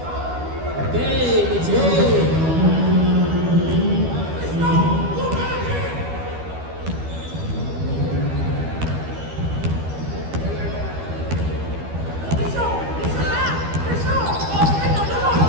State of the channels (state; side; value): late; left; 12 ms